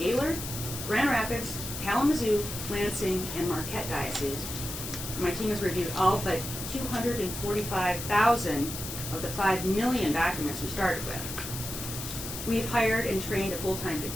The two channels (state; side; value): noise; left; hiss, 7 dB below the sound